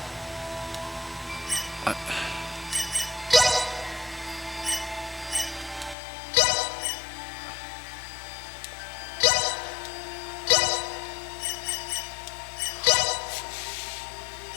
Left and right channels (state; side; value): drops out; right; at 6.0 s